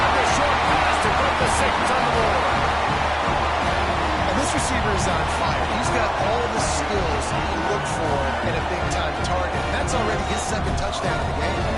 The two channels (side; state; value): both; identical; correlation 1.00